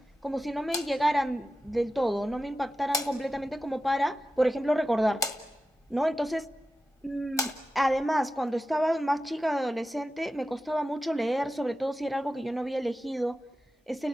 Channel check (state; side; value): normal; both; correlation 0.92